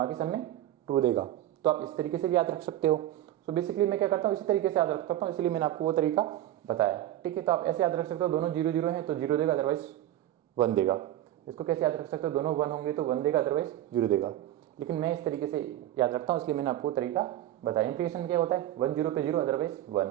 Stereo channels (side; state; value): left; quieter; 13.4 dB